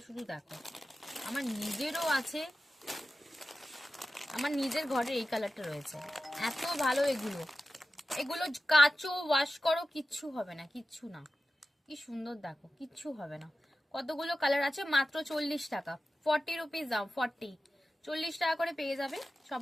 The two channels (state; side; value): normal; both; correlation 0.94